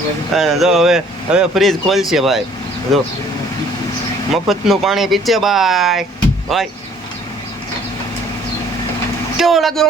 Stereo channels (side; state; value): both; normal; correlation 0.57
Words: જો હવે ફ્રીજ ખોલશે ભાઈ, જો મફતનું પાણી પીછે ભાઈ। ભાઈ કેવો લાગ્યો